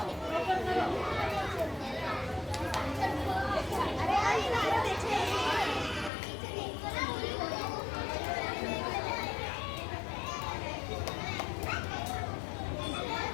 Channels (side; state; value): right; drops out; at 6.1 s